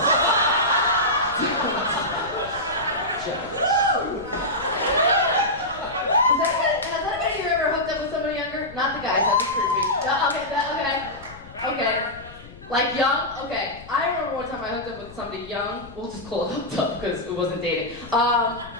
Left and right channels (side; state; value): left; noise; rumble, 18 dB below the sound